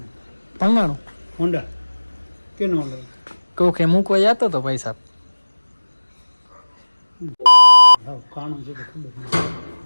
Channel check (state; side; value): inverted; both; correlation -1.00